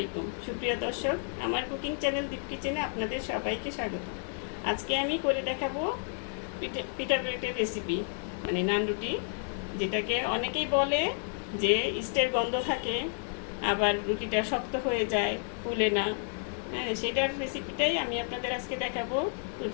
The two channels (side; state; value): right; silent; 57 dB below the other